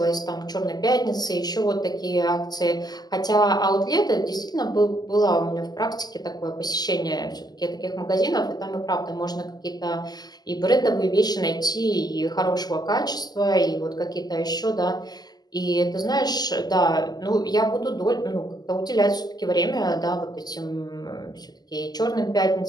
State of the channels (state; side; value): late; right; 0.20 ms